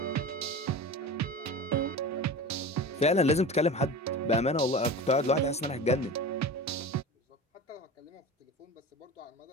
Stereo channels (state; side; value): normal; both; correlation 0.31